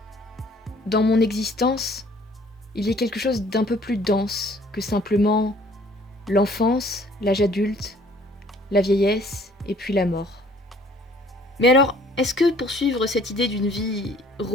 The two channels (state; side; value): normal; both; correlation 0.57